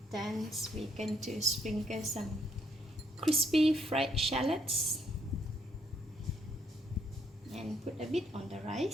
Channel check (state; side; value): normal; both; correlation 0.72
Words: Then we're going to sprinkle some crispy fried shallots and put a bit on the